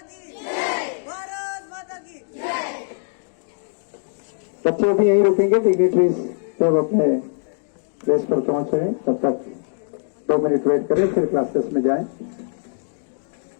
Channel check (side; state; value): right; silent; digital silence